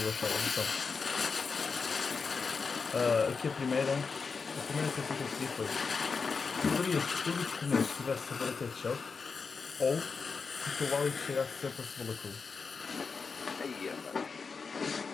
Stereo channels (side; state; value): right; quieter; 5.0 dB